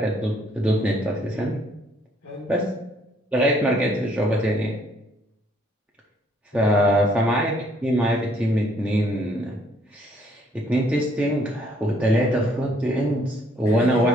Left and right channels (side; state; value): both; normal; correlation 0.65